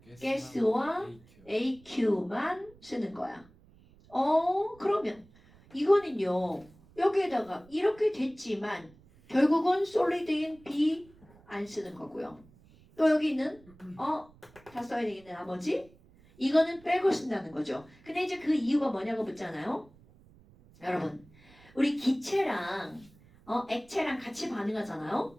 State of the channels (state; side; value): noise; right; rumble, 26 dB below the sound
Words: 가스와 AQ만 쓰는 거야. 그러면 이거는요. 여기에다가 이렇게 됐지만 결국은 솔리드인 B 안 쓰는 거고요. 또 여기 있는 다 써야 되겠네 나머지 이거는 빼고 쓴다는 거죠. 근데 이제 그 이유가 뭐냐고 묻잖아요. 여러분 우리 기체랑 액체랑 같이